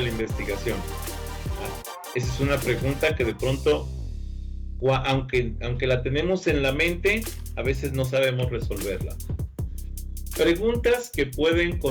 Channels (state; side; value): identical; both; correlation 1.00